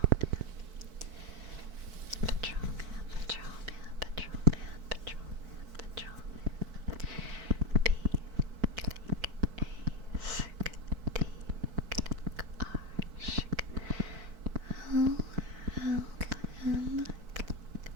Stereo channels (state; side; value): late; left; 4.5 ms